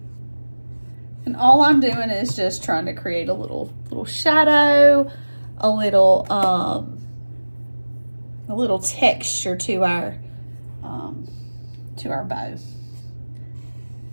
And all I'm doing is just trying to create a little shadow, a little texture to our bow.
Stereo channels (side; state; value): both; inverted; correlation -1.00